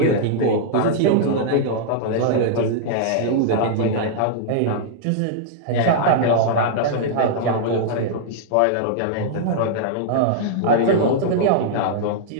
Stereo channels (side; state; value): both; different; correlation -0.02